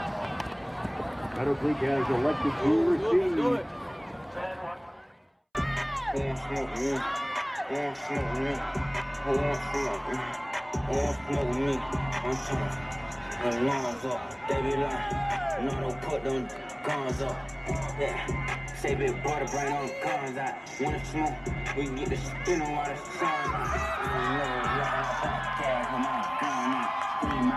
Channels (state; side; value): identical; both; correlation 1.00